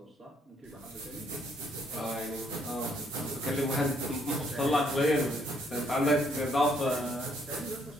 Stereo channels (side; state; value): both; normal; correlation 0.69